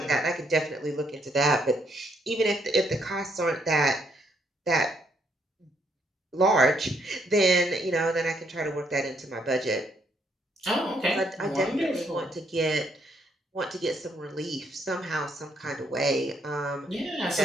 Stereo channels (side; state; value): both; normal; correlation 0.72